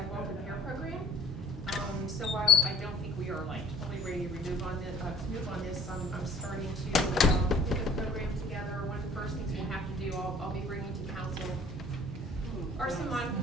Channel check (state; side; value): normal; both; correlation 0.52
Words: repair program. So while I don't think we are like totally ready to move on this, I'm starting to put the program together. One of the first things we'll have to do, I'll be bringing to council are some